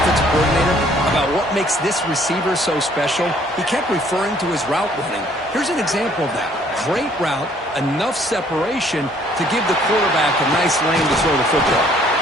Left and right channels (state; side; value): normal; both; correlation 0.61